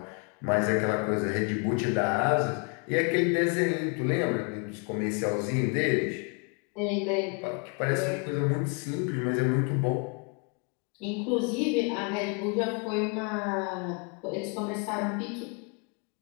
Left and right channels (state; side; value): quieter; right; 35.5 dB